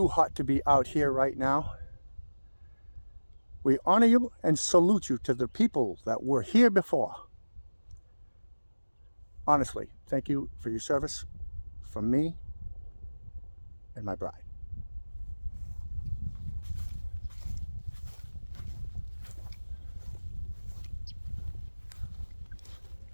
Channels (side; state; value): both; inverted; correlation -1.00